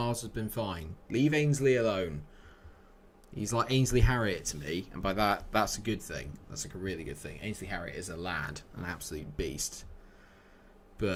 has been fine. Leave Ainsley alone. He's like Ainsley Harriott to me. And by that, that's a good thing. That's like a really good thing. Ainsley Harriott is a lad. An absolute beast.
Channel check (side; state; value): both; identical; correlation 1.00